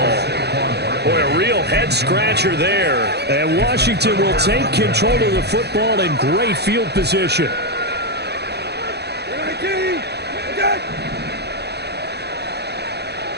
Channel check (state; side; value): late; left; 0.48 ms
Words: Boy, a real head-scratcher there. And Washington will take control of the football in great field position.